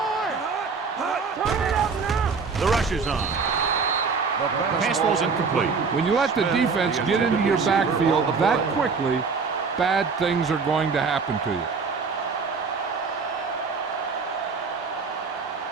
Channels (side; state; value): left; quieter; 5.0 dB